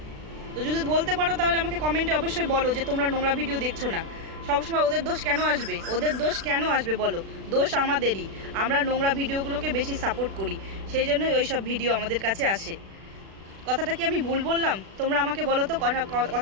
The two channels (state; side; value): late; left; 36 ms